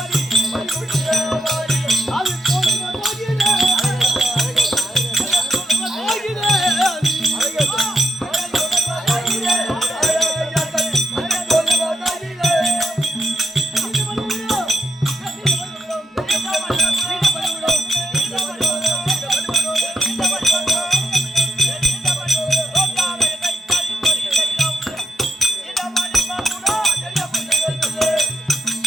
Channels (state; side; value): normal; both; correlation 0.82